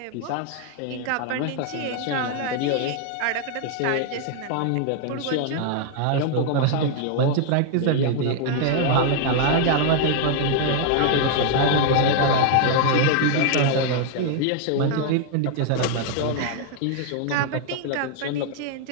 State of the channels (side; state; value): both; different; correlation 0.00